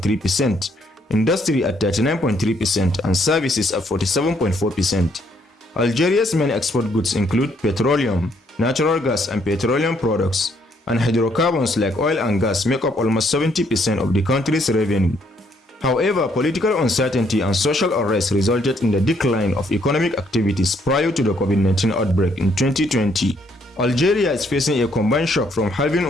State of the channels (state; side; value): normal; both; correlation 0.69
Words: industry at 39.3%, and services at 47.4%. Algeria's main export goods include petroleum, natural gas and petroleum products, and hydrocarbons like oil and gas make up almost 70% of the country's revenue. However, political uncertainty and social unrest resulted in the decline of economic activities prior to the COVID-19 outbreak in 2020. Algeria is facing a combined shock from halving